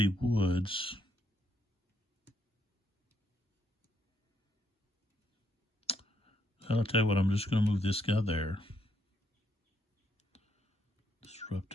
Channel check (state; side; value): normal; both; correlation 0.74